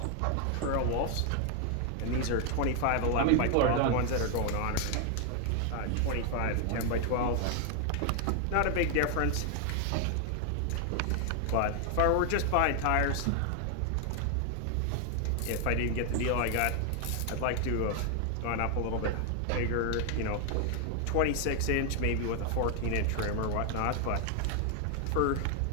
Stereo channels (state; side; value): different; both; correlation 0.00